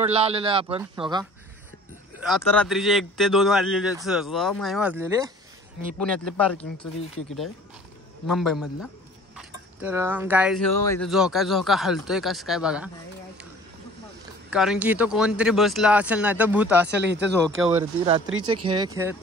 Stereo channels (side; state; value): both; normal; correlation 0.49